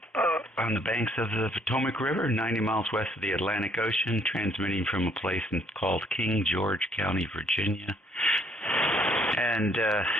on the banks of the Potomac River, 90 miles west of the Atlantic Ocean, transmitting from a place called King George County, Virginia. And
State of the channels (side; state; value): both; normal; correlation 0.65